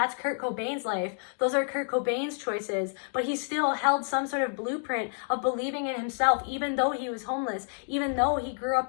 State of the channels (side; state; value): right; silent; 59 dB below the other